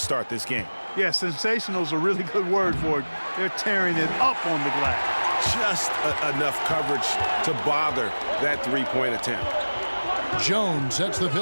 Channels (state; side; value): inverted; both; correlation -1.00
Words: this game. Yeah, sensational is a really good word for it. They're tearing it up on the glass. Just enough coverage to bother that three-point attempt. Jones sets the